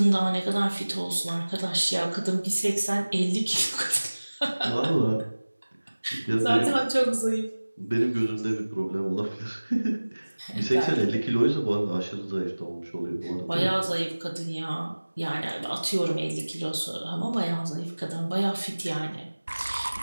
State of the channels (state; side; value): inverted; both; correlation -1.00